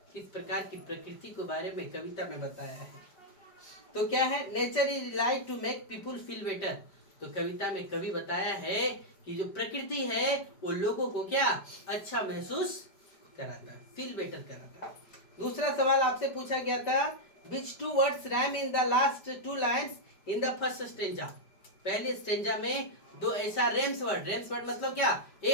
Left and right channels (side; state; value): right; late; 5.2 ms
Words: किस प्रकार की प्रकृति के बारे में कविता में बताया है? तो क्या है? Nature is like to make people feel better. तो कविता में कवि बताया है कि जो प्रकृति है वो लोगों को क्या अच्छा महसूस कराता है, फील बेटर कराता है। दूसरा सवाल आपसे पूछा गया था, which two words rhyme in the last 2 lines in the first stanza? पहले स्टेंजा में दो ऐसा रेम्स वर्ड मतलब क्या?